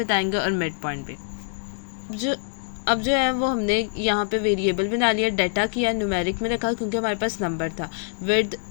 और मिड पॉइंट भी। अब जो है वो हमने यहाँ पे वेरिएबल बना लिया, डाटा किया न्यूमेरिक में रखा क्योंकि हमारे पास नंबर था, विड्थ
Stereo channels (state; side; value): silent; right; 62 dB below the other